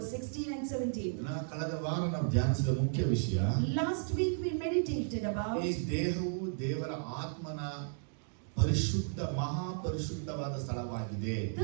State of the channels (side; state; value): left; silent; digital silence